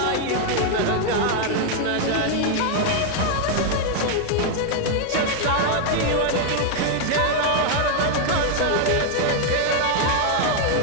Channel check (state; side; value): different; both; correlation 0.00